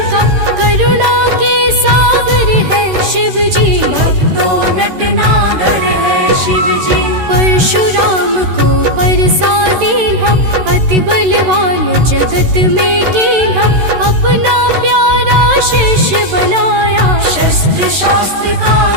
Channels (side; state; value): left; late; 13 ms